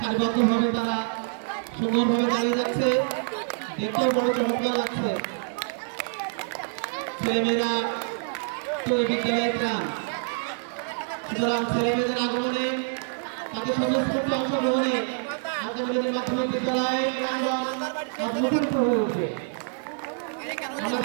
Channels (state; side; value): silent; left; 61 dB below the other